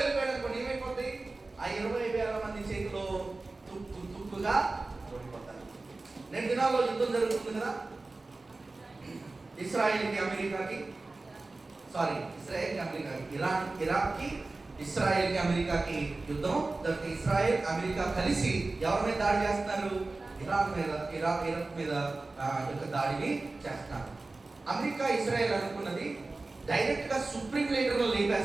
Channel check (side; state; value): left; quieter; 3.3 dB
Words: అనుకోండి, ఏమైపోతుంది? ఆ 20,000 మంది చేతిలో తుక్కుగా ఓడిపోతారు. 2 దినాల్లో యుద్ధం జరుగుతుంది కదా, ఇస్రాయేల్కి అమెరికాకి, ఇరాక్కి ఇస్రాయేల్కి అమెరికాకి యుద్ధం. ఇస్రాయేల్ అమెరికా కలిసి ఎవరి మీద దాడి చేస్తున్నారు? ఇరాక్ మీద యొక్క దాడిని చేస్తున్నారు. అమెరికా ఇజ్రాయెల్ అనుకున్నది డైరెక్ట్ గా సుప్రీం లీడర్లో